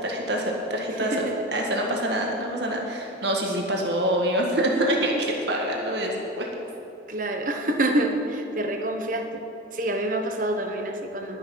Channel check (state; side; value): normal; both; correlation 0.26